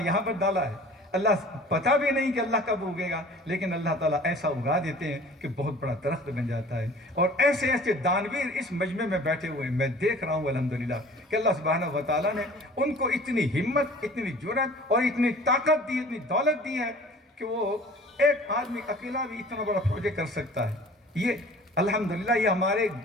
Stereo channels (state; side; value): normal; both; correlation 0.46